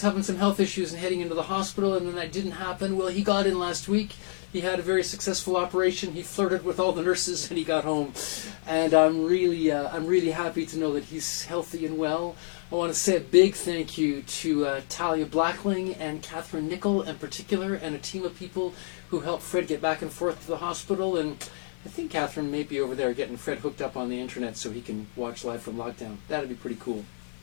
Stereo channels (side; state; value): right; silent; 59 dB below the other